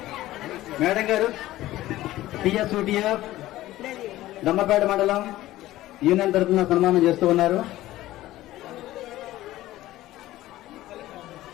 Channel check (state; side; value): quieter; right; 15.7 dB